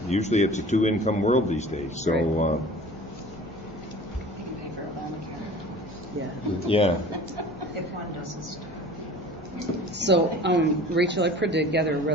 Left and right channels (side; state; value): both; normal; correlation 0.43